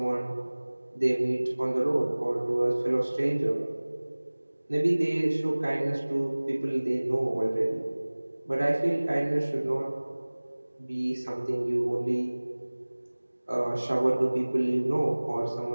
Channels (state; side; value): inverted; both; correlation -1.00